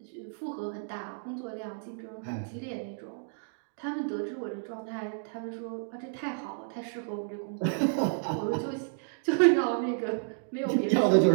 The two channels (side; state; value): left; silent; digital silence